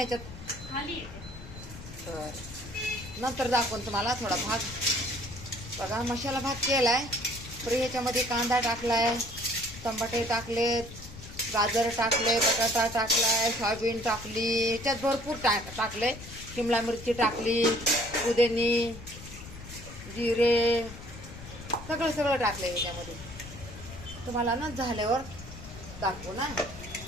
याच्यात. खाली येते. तर नंतर दाखवून तुम्हाला थोडा भात. बघा मसाला भात केलाय. तर ह्याच्यामध्ये कांदा टाकलाय, टमाटे टाकलेत, गाजर टाकले, बटाटा टाकलाय, सोयाबीन टाकली, ह्याच्यात भरपूर टाकले. शिमला मिरची टाकली, पुदिनी, जिरे, सगळं टाकलंय ह्याच्यामध्ये. तुम्हाला ना झाल्यावर दाखवू ना,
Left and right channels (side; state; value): left; noise; rumble, 14 dB below the sound